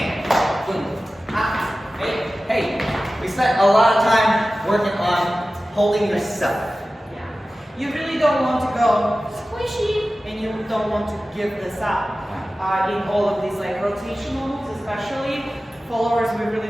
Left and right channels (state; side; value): normal; both; correlation 0.95